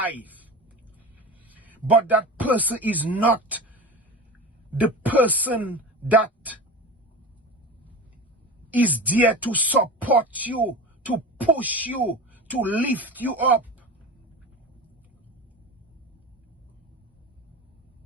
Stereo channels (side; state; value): both; normal; correlation 0.29